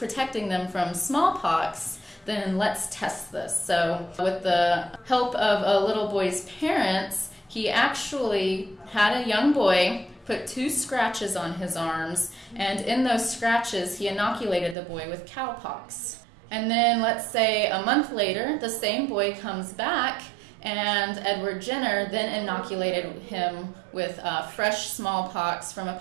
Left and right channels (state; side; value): drops out; left; at 14.8 s